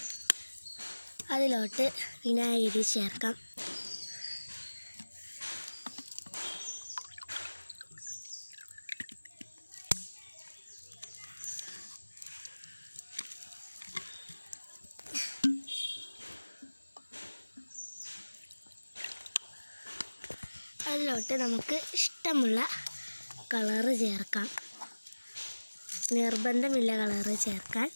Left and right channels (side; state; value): both; inverted; correlation -1.00